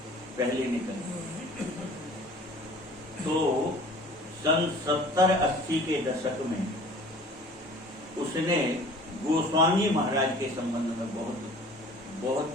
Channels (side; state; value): both; normal; correlation 0.47